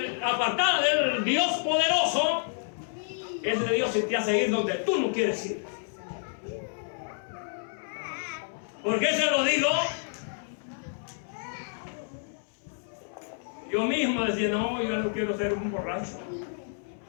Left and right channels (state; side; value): silent; right; 58 dB below the other